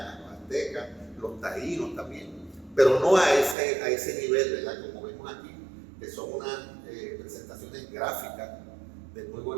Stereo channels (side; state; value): left; drops out; at 3.6 s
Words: los aztecas, los taínos también, pero no a ese nivel, ¿verdad?, como vemos aquí, que son unas presentaciones gráficas de muy